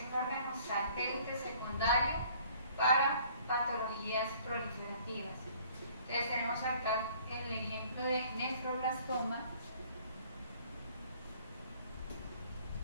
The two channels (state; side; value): inverted; both; correlation -0.56